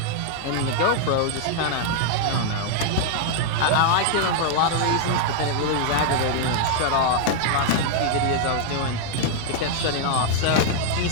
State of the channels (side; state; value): both; different; correlation -0.01